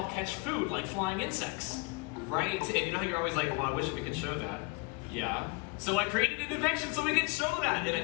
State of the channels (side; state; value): right; quieter; 29.0 dB